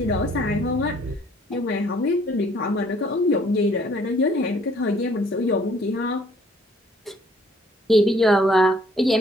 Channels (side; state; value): both; normal; correlation 0.60